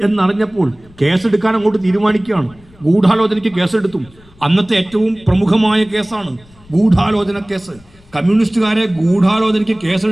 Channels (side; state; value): left; noise; rumble, 27 dB below the sound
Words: എന്നറിഞ്ഞപ്പോൾ കേസെടുക്കാൻ അങ്ങോട്ട് തീരുമാനിക്കുകയാണ്. ഗൂഢാലോചനയ്ക്ക് കേസെടുത്തു. അന്നത്തെ ഏറ്റവും പ്രമുഖമായ കേസാണ് ഗൂഢാലോചന കേസ്. കമ്മ്യൂണിസ്റ്റുകാരെ ഗൂഢാലോചനയ്ക്ക്